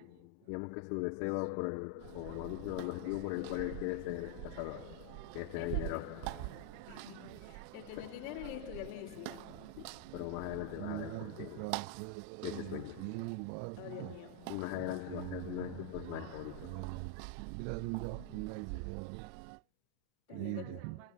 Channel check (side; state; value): both; different; correlation 0.00